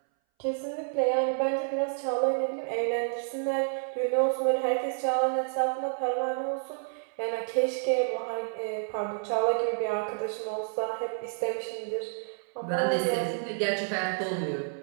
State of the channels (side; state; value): left; silent; 58 dB below the other